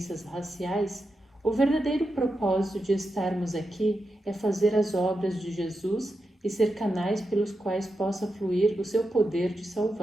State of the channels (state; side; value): normal; both; correlation 0.88